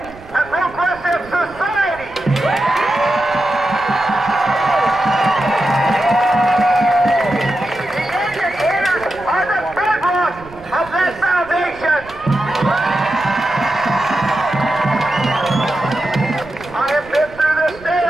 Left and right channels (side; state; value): right; noise; rumble, 21 dB below the sound